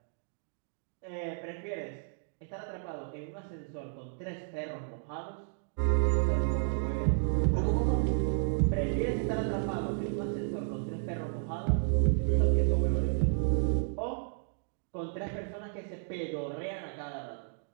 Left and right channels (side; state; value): left; silent; digital silence